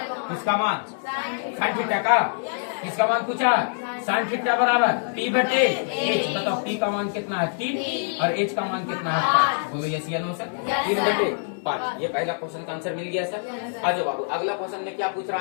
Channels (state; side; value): silent; right; 62 dB below the other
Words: किसका मान? साइन थीटा का। किसका मान पूछा? साइन थीटा बराबर P/H। बताओ P का मान कितना है? 3 और H का मान कितना है? 5। बोलो यस या नो सर? 3/5। ये पहला क्वेश्चन का आंसर मिल गया सर। आ जाओ बाबू, अगला क्वेश्चन में क्या पूछ